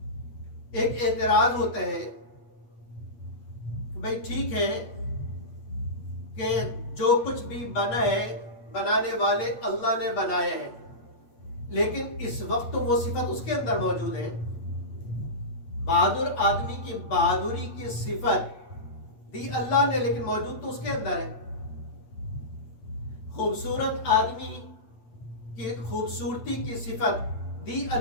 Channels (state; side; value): late; right; 8.5 ms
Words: ایک اعتراض ہوتا ہے کہ بھائی ٹھیک ہے کہ جو کچھ بھی بنا ہے بنانے والے اللہ نے بنایا ہے، لیکن اس وقت وہ صفت اس کے اندر موجود ہے۔ بہادر آدمی کی بہادری کی صفت دی اللہ نے، لیکن موجود تو اس کے اندر ہے۔ خوبصورت آدمی کی خوبصورتی کی صفت دی